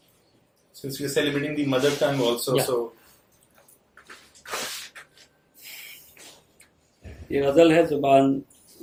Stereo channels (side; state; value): both; identical; correlation 1.00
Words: Since we are celebrating the mother tongue also, Yeah. so ये गज़ल है